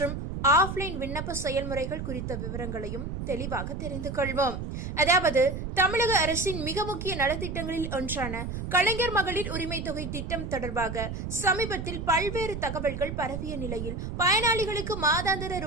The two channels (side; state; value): right; noise; rumble, 6 dB below the sound